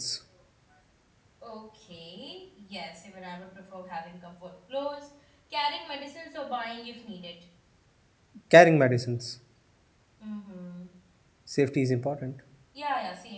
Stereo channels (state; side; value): identical; both; correlation 1.00